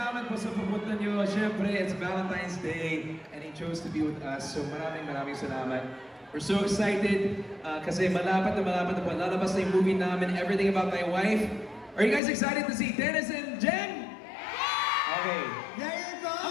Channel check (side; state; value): right; drops out; at 12.2 s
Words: po sa pupunta niyo. Siyempre, it's Valentine's Day and he chose to be with us. So maraming salamat. We're so excited kasi malapit na po. Lalabas na yung movie namin, Everything About My Wife. Are you guys excited to see Dennis and Jen? Okay. There you go!